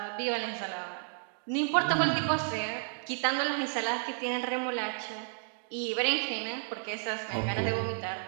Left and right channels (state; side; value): silent; left; digital silence